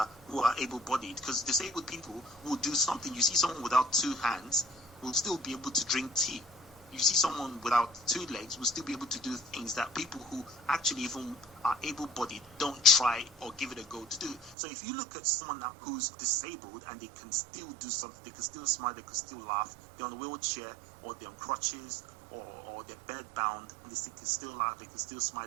able-bodied, because disabled people will do something. You see someone without 2 hands will still be able to drink tea. You see someone without 2 legs will still be able to do things that people who actually even are able-bodied don't try or give it a go to do. So if you look at someone who's disabled and they can still do something, they can still smile, they can still laugh, they're on a wheelchair or they're on crutches or they're bed-bound, and they can still laugh, they can still smile,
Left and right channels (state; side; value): drops out; left; at 14.6 s